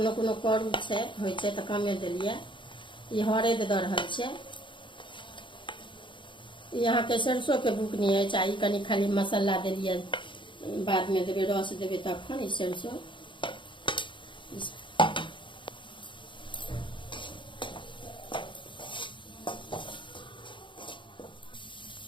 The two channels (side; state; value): right; late; 0.24 ms